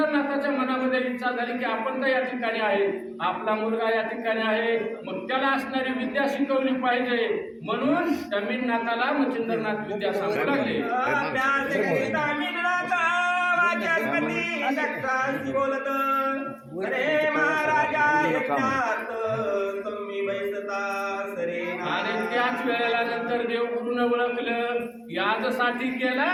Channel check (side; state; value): both; identical; correlation 1.00